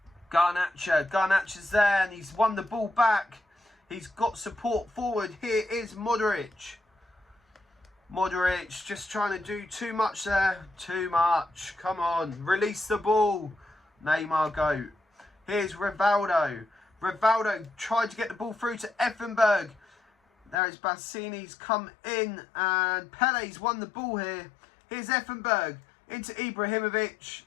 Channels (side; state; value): right; drops out; at 20.6 s